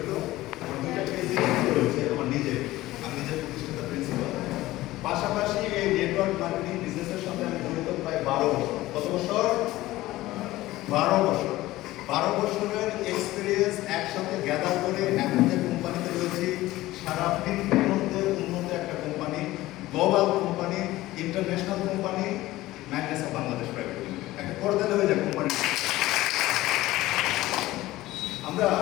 আমার দুইটা পেজ রয়েছে আমার নিজের, আমি নিজের প্রতিষ্ঠিত প্রিন্সিপাল। পাশাপাশি এই নেটওয়ার্ক মার্কেটিং বিজনেসের সাথে আমি জড়িত প্রায় 12 বছর। কত বছর? 12 বছর। 12 বছরের এক্সপিরিয়েন্স একসাথে গ্যাদার করে এখন যে কোম্পানিতে রয়েছি, সারা পৃথিবীর মধ্যে উন্নত একটা company, global company, international company, Magnes of Bangladesh private limited, একটা করদালে হয়ে যায় কোম্পানি। আমরা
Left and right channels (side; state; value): right; quieter; 17.1 dB